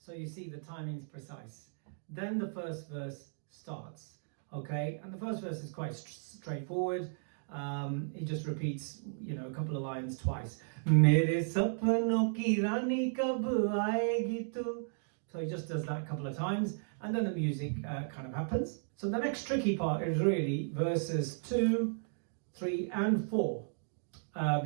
you see the timing's precise. Then the first verse starts, okay? And the first verse is quite straightforward. He just repeats, a couple of lines twice. Mere sapano ki rani kab aayegi tu. So he just does that a couple of times, and then the music kind of happens. So the next tricky part is really verses 2, 3, and 4,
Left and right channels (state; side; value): silent; left; digital silence